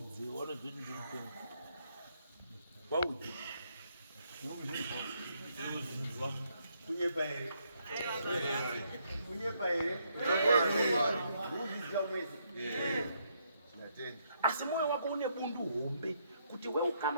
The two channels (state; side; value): inverted; both; correlation -0.74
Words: wanozoti ndiripenga waudze kunyepa here uzviziva mwese asi mwoyo wako une bundu hombe kuti